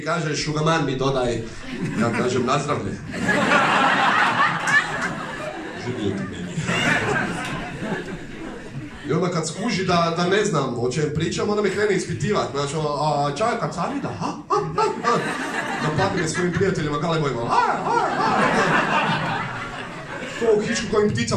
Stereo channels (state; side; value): identical; both; correlation 1.00